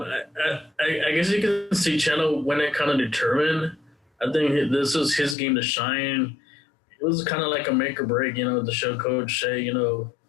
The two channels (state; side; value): drops out; right; at 5.4 s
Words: guess you can see Chano when it kind of determined. I think this was his game to shine. It was kind of like a make or break, to show Coach Shea, you